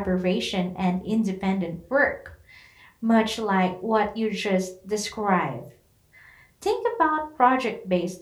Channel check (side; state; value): both; identical; correlation 1.00